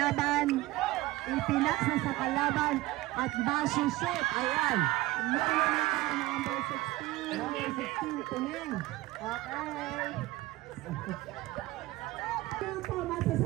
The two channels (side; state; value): left; quieter; 18.5 dB